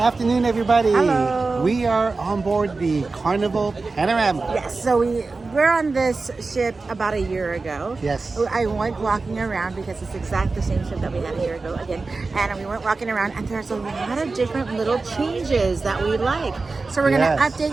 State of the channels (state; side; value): quieter; left; 3.9 dB